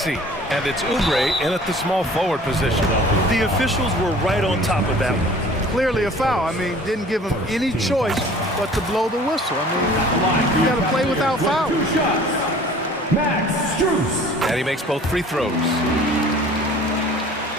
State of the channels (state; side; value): normal; both; correlation 0.48